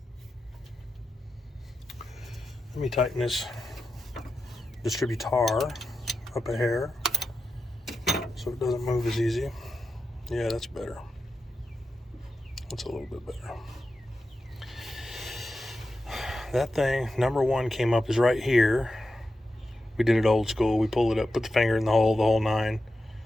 Let me tighten this distributor up a hair so it doesn't move as easy. Yeah, that's better. That's a little bit better. That thing, number 1 came up is right here. We did it old school. We pulled it up, put the finger in the whole 9.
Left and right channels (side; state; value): both; normal; correlation 0.90